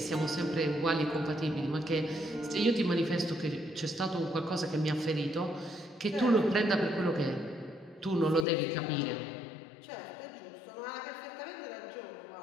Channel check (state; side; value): drops out; right; at 8.5 s